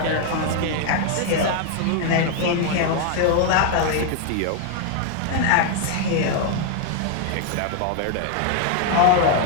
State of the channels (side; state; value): both; different; correlation 0.00